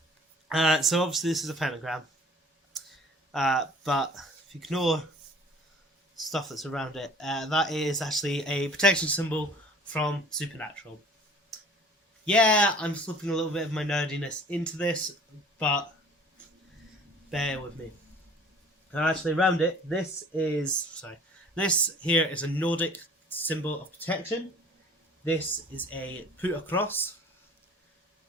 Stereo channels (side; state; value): both; normal; correlation 0.49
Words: So obviously this is a pentagram, but if you ignore stuff that's around it, that is actually a protection symbol from Supernatural. Yeah, I'm slipping a little bit of my nerdiness into this, but bear with me. And actually, around it, this here is a Nordic symbol of protection. This is a put across.